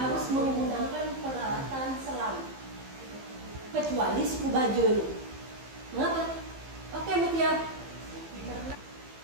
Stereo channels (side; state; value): left; late; 15 ms